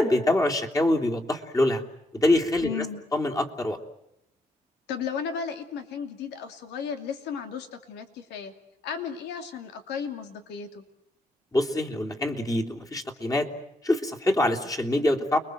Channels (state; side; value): normal; both; correlation 0.78